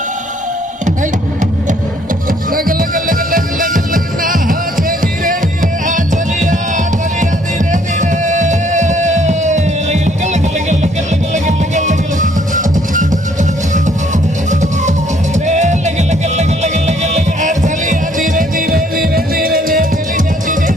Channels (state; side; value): normal; both; correlation 0.64